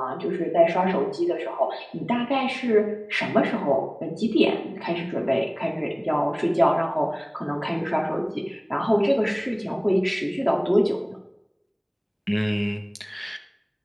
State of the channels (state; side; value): identical; both; correlation 1.00